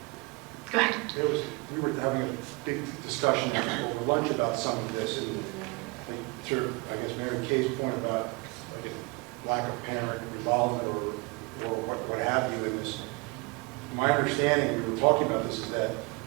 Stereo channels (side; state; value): left; quieter; 27.7 dB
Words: go ahead. We were having a big discussion over lunch about some of this, and I guess Mary Kay's point about lack of parent involvement or what have you in this. My understanding, we were talking about this, is that